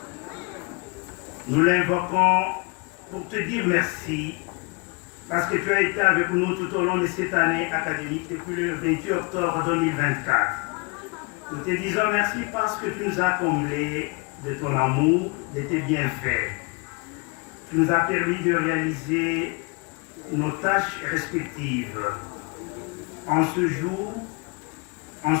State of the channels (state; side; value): quieter; right; 30.1 dB